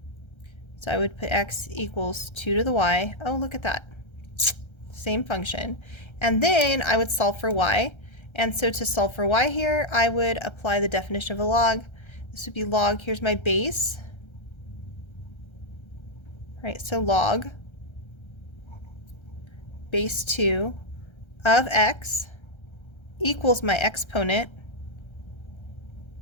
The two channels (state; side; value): late; right; 1.3 ms